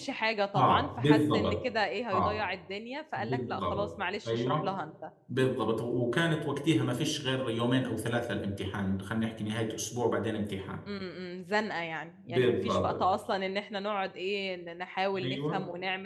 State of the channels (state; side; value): identical; both; correlation 1.00